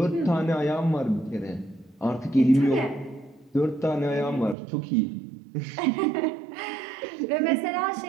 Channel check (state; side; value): drops out; left; at 4.5 s